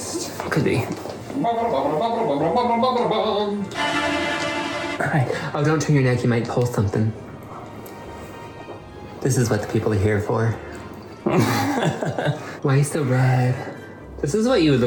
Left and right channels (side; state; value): both; identical; correlation 1.00